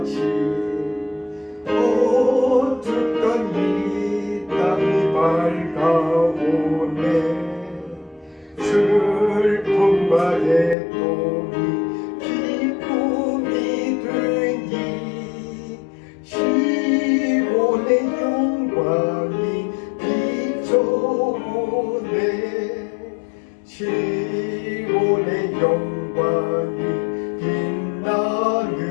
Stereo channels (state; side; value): drops out; right; at 10.8 s